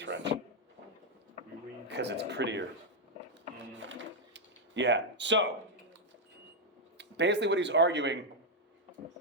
Because it's prettier. Yeah. So, basically what he's arguing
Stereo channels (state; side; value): normal; both; correlation -0.01